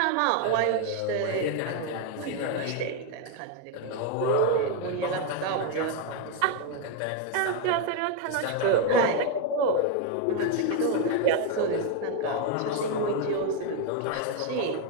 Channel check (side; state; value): both; different; correlation 0.01